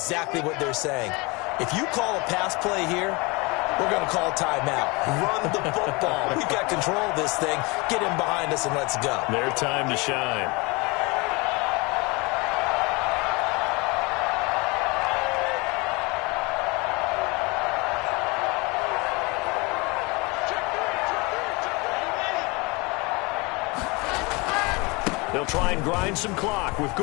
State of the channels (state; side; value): quieter; right; 26.6 dB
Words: what they're saying. If you call a pass play here, we're going to call a timeout. Run the football. We've got control of this thing. Get him behind us and let's go. Their time to shine. They'll try and grind some clock with